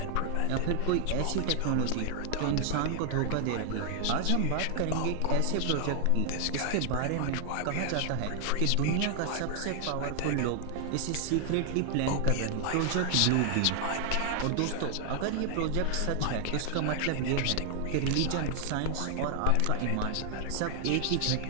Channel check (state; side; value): different; both; correlation 0.00